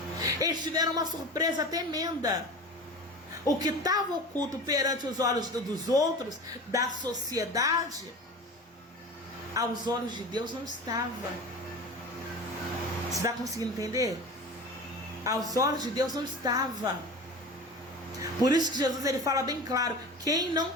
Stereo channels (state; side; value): normal; both; correlation 0.33